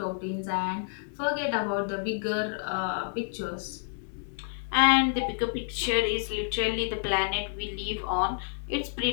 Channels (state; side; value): silent; right; digital silence